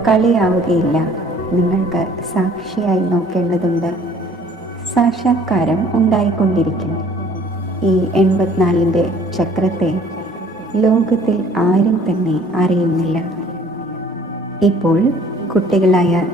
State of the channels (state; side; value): normal; both; correlation 0.55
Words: കളിയാവുകയില്ല. നിങ്ങൾക്ക് സാക്ഷിയായി നോക്കേണ്ടതുണ്ട്. സാക്ഷാത്കാരം ഉണ്ടായിക്കൊണ്ടിരിക്കും. ഈ 84ന്റെ ചക്രത്തെ ലോകത്തിൽ ആരും തന്നെ അറിയുന്നില്ല. ഇപ്പോൾ കുട്ടികളായ